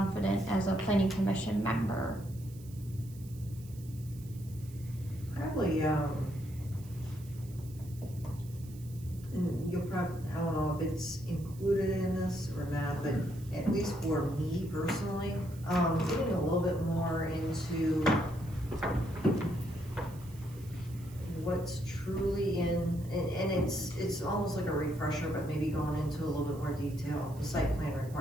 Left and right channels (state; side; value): noise; right; hiss, 22 dB below the sound